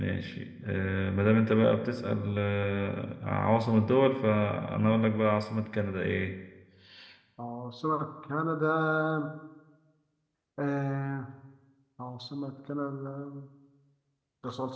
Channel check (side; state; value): both; identical; correlation 1.00